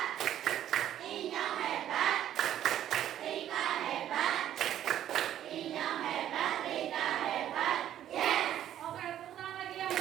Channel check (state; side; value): quieter; left; 11.3 dB